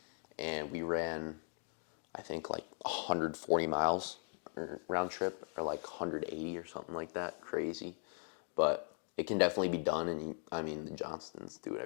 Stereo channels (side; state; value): right; silent; 52 dB below the other